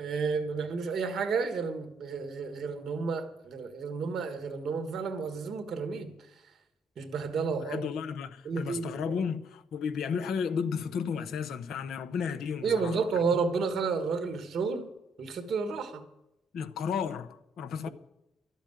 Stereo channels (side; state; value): both; normal; correlation 0.68